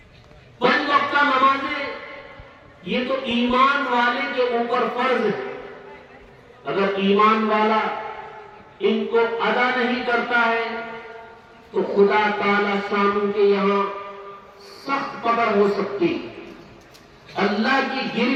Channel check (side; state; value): both; identical; correlation 1.00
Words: 5 وقتہ نمازیں یہ تو ایمان والے کے اوپر فرض ہے۔ اگر ایمان والا ان کو ادا نہیں کرتا ہے تو خدا تعالی شانہ کے یہاں سخت پکڑ ہو سکتی، اللہ کی